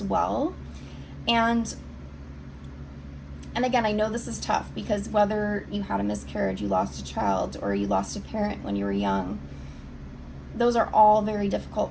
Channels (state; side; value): identical; both; correlation 1.00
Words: well. And again, I know this is tough because whether you had a miscarriage, you lost a child, or you lost a parent when you were young, those are all very